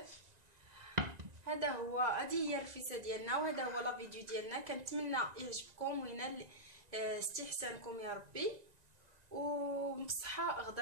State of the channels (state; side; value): late; left; 1.9 ms